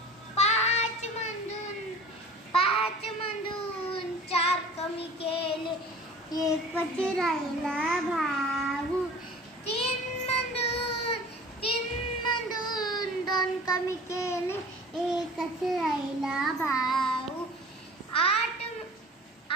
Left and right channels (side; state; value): both; normal; correlation 0.43